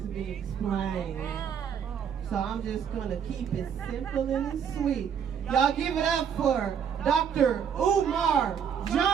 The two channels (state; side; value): quieter; left; 7.9 dB